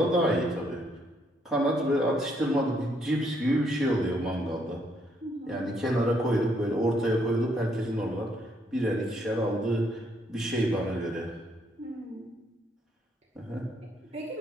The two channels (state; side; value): normal; both; correlation 0.72